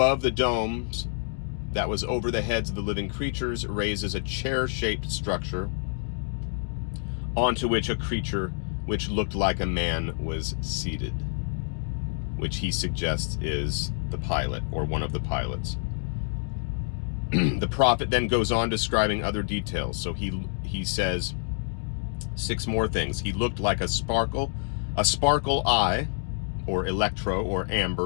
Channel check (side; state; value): right; silent; 55 dB below the other